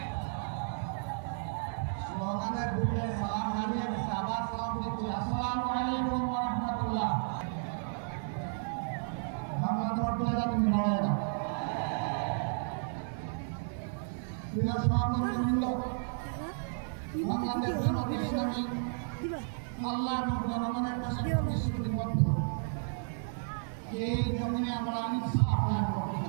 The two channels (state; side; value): silent; left; 56 dB below the other